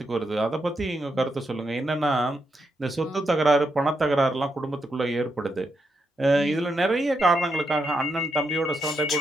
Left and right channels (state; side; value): normal; both; correlation 0.82